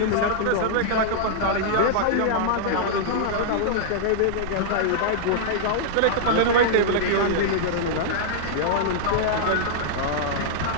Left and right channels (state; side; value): different; both; correlation -0.02